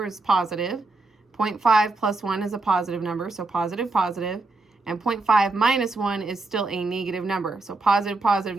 is positive. 0.5 plus 1 is a positive number, so positive, positive. And 0.5 minus 1 is still a negative number. So positive, positive,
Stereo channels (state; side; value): quieter; left; 3.3 dB